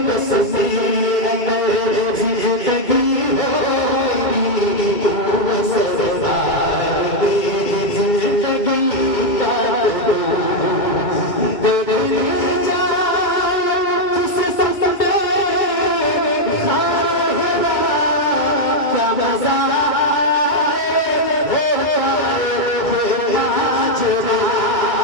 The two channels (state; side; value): late; right; 2.2 ms